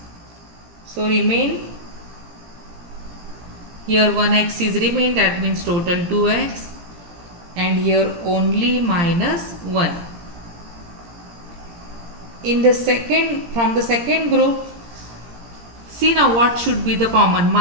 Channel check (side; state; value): left; late; 17 ms